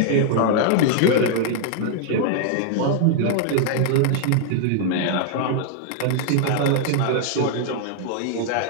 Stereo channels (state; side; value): different; both; correlation 0.00